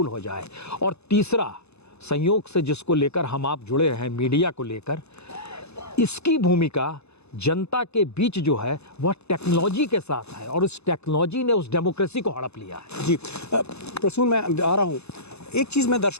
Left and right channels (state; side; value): late; right; 0.80 ms